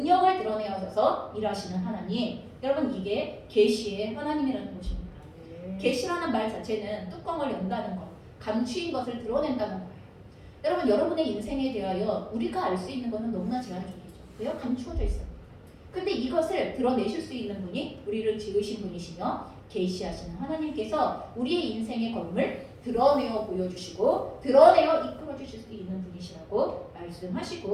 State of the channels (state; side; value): identical; both; correlation 1.00